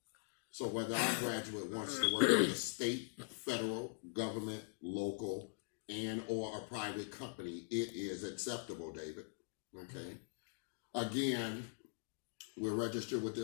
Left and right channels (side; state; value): right; silent; digital silence